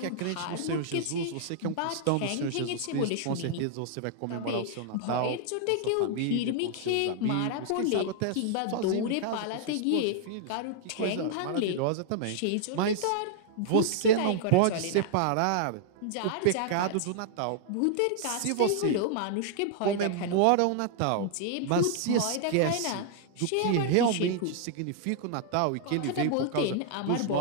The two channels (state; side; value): different; both; correlation -0.01